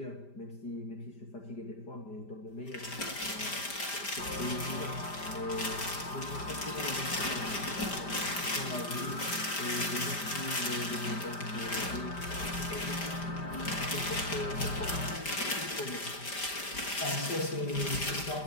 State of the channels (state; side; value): late; right; 5.0 ms